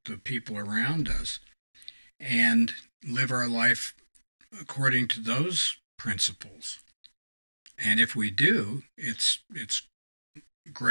the people around us, and live our life according to those principles. And if we do, it's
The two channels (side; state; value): both; inverted; correlation -1.00